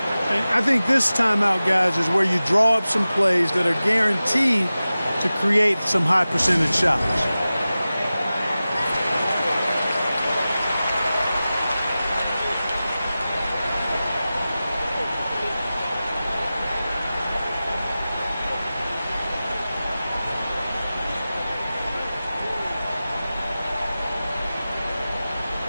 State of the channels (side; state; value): both; inverted; correlation -0.96